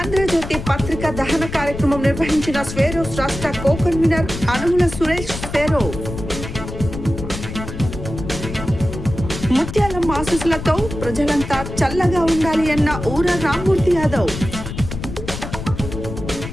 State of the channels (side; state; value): left; noise; rumble, 8 dB below the sound